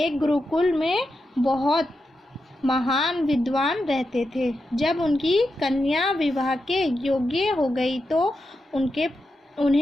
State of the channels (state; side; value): normal; both; correlation 0.88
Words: गुरुकुल में बहुत महान विद्वान रहते थे। जब उनकी कन्या विवाह के योग्य हो गई तो